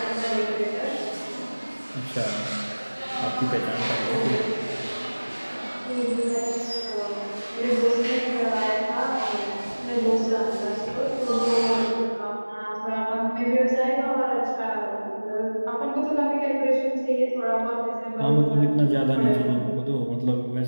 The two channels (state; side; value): inverted; both; correlation -1.00